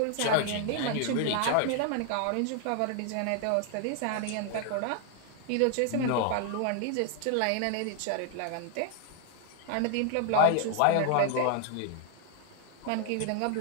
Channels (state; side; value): different; both; correlation 0.00